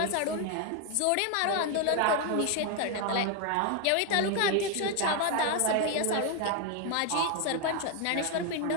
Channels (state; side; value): different; both; correlation 0.01